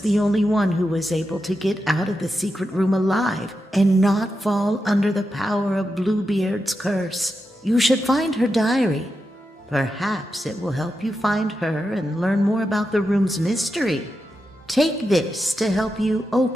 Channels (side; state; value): both; normal; correlation 0.88